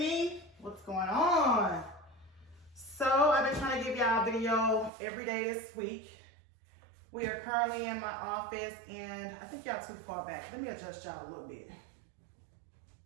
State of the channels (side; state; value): left; drops out; at 4.9 s